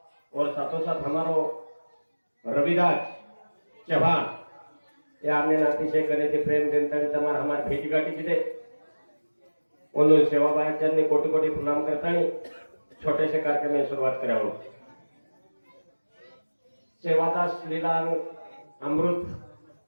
और साथों साथ हमारो रविदास चौहान या हमने अतिशय गणित प्रेम जनता हमारे हमारे भेटी गाठी की उन सेवाबाई कोटि कोटि प्रणाम करता छोटे से कार्यक्रम में शुरुआत करा सेवादास लीला अमृत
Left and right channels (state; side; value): inverted; both; correlation -1.00